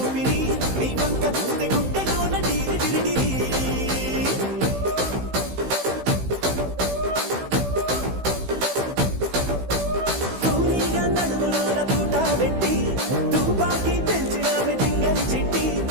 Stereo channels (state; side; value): late; left; 16 ms